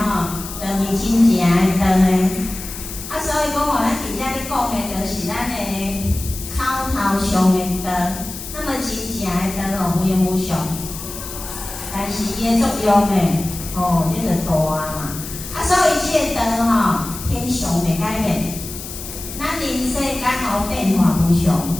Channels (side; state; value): left; noise; hiss, 10 dB below the sound